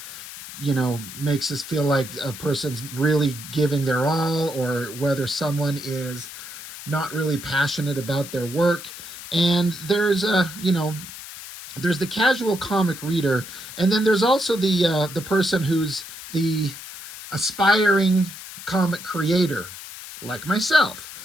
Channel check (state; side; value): noise; left; hiss, 13 dB below the sound